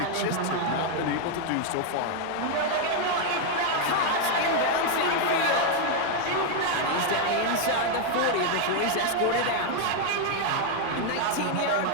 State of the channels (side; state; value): both; different; correlation 0.01